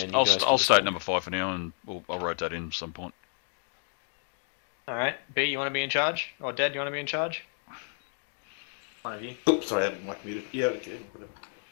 you I'll guys can state decide. number 5 for now, and I'll rotate in at some point. Alright, B, you want to be in charge? Or Dad, you want to be in charge? One of you. Oops, sorry, I haven't mic muted. Yeah, okay, whatever.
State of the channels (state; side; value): silent; right; 58 dB below the other